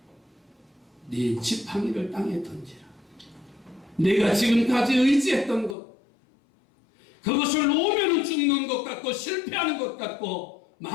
네 지팡이를 땅에 던지라. 내가 지금까지 의지했던 것, 그것을 놓으면 죽는 것 같고 실패하는 것 같고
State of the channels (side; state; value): right; drops out; at 5.8 s